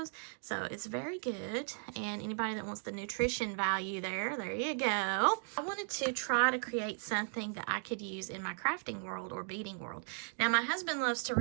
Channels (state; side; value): silent; left; 54 dB below the other